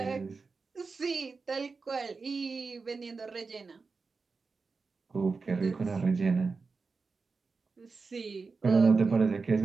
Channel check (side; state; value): left; quieter; 4.4 dB